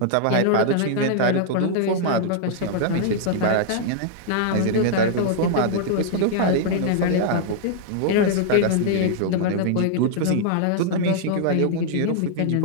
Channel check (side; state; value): both; different; correlation -0.01